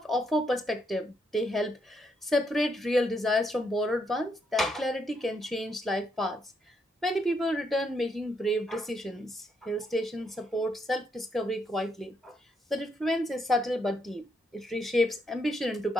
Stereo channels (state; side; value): normal; both; correlation 0.77